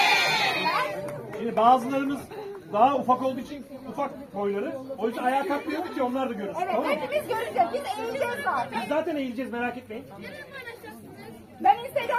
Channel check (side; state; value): both; identical; correlation 1.00